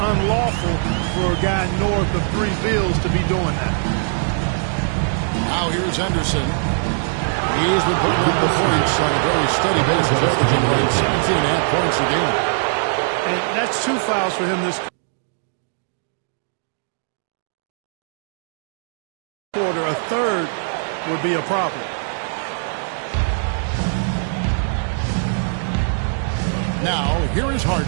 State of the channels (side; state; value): left; silent; digital silence